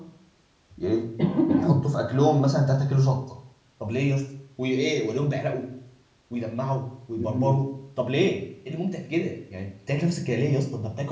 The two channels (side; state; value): both; identical; correlation 1.00